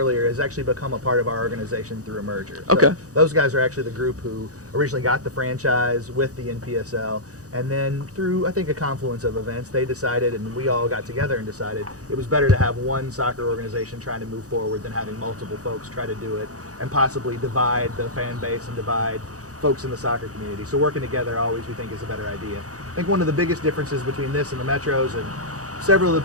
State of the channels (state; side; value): late; left; 0.66 ms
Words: has actually become a part of our organization through a merger. Okay. So those guys are actually the group who originally got the franchise with the NPSL, and then through, I think, a confluence of events, they decided, and we all got together and decided it was better to have one soccer organization trying to move forward than having multiple folks try to do it and possibly divide the fan base and divide folks in the soccer community. So working together always, we think, is a better idea. I think one of the biggest differences between this and the Metros, and several of